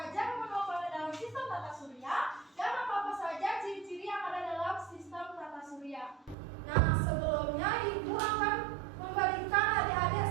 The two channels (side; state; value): left; drops out; at 6.4 s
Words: nama planet dalam sistem tata surya dan apa-apa saja ciri-ciri yang ada dalam sistem tata surya. Nah, sebelumnya Ibu akan memberikan